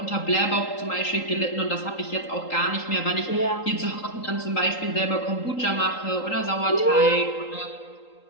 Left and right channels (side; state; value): right; late; 3.8 ms